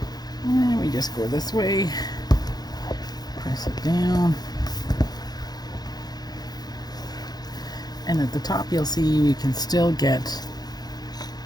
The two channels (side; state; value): right; late; 0.19 ms